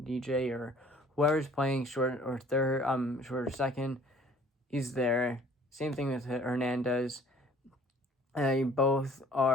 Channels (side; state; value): both; normal; correlation 0.53